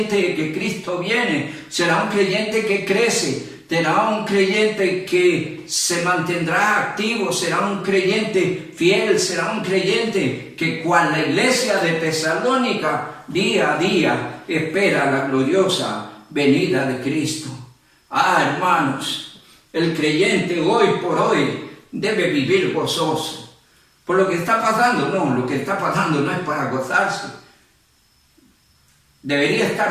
de que Cristo viene. Será un creyente que crece, será un creyente que se mantendrá activo, será un creyente fiel, será un creyente que, cual la iglesia de Tesalónica, día a día espera la gloriosa venida de Cristo. Hermanos, el creyente hoy por hoy debe vivir gozoso. Por lo que está pasando, no, lo que está pasando no es para gozarse. Debería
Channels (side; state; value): both; identical; correlation 1.00